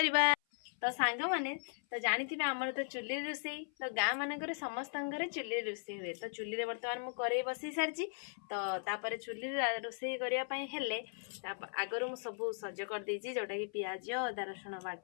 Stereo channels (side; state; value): right; silent; 53 dB below the other